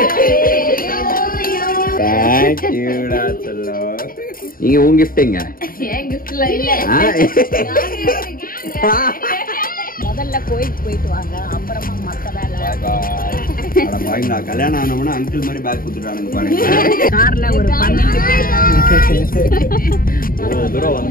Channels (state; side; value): late; right; 0.41 ms